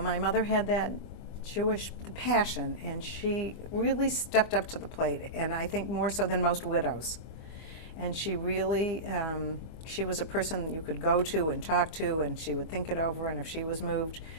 mother had that Jewish passion, and she really stepped up to the plate, and I think more so than most widows. And she really, she was a person you could go to and talk to, and she would think it over, and if she was moved,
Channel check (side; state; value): right; late; 25 ms